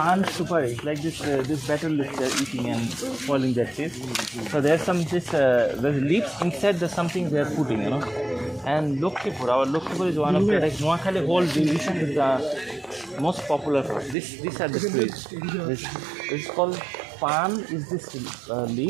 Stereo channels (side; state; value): left; drops out; at 14.2 s